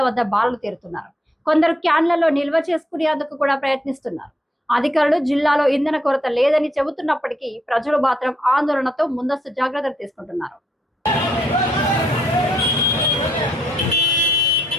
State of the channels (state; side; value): normal; both; correlation 0.75